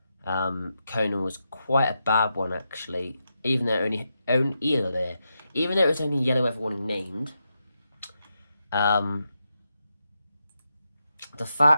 Conan was quite a bad one, actually, even though it was only yellow weather warning named. The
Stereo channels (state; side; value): inverted; both; correlation -0.86